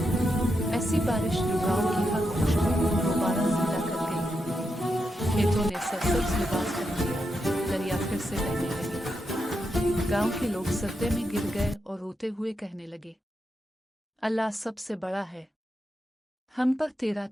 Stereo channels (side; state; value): both; normal; correlation 0.85